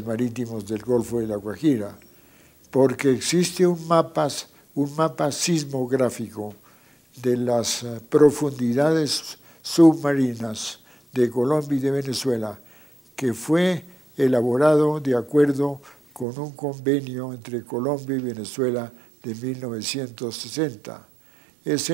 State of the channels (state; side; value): drops out; left; at 16.2 s